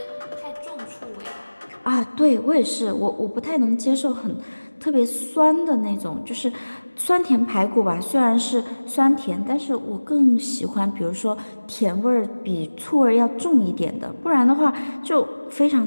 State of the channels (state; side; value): inverted; both; correlation -1.00